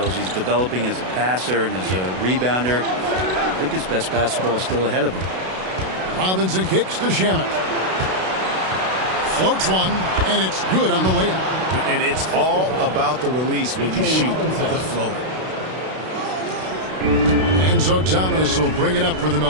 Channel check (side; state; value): left; late; 32 ms